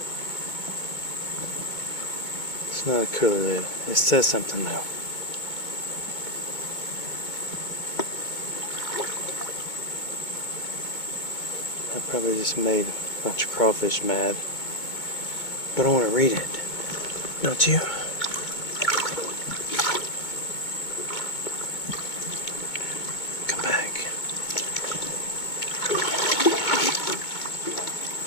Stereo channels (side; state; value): right; late; 2.2 ms